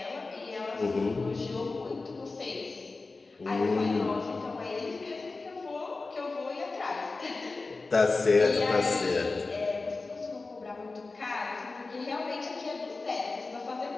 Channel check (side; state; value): right; quieter; 3.7 dB